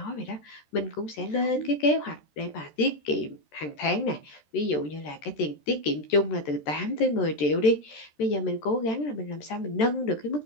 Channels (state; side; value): late; right; 13 ms